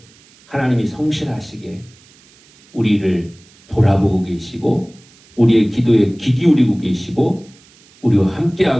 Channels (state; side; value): noise; right; hiss, 28 dB below the sound